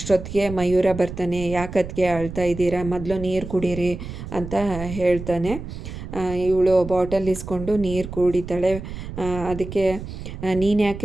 ಮಯೂರ ಬರ್ತಾನೆ. ಯಾಕದಕ್ಕೆ ಅಳ್ತಾ ಇದ್ದೀರಾ, ಮೊದಲು ನೀರು ಕುಡೀರಿ ಅಂತ ಹೇಳ್ತಾನೆ. ಇವಳು ಬಾಟಲ್ ಇಸ್ಕೊಂಡು ನೀರು ಕುಡಿತಾಳೆ. ಅದಕ್ಕೆ ನೀನು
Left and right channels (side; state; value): right; noise; rumble, 10 dB below the sound